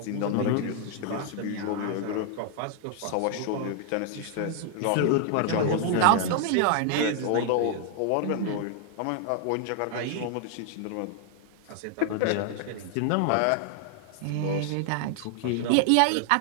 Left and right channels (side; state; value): both; different; correlation 0.00